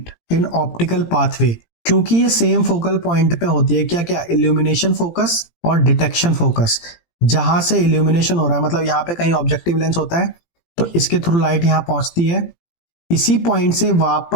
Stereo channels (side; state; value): right; late; 17 ms